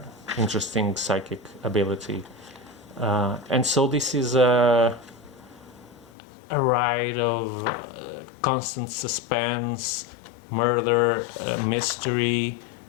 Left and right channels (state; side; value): drops out; right; at 6.1 s